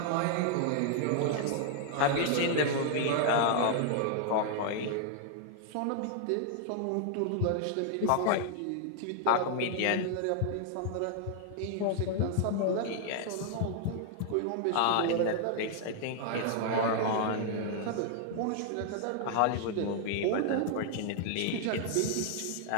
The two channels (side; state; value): both; different; correlation -0.01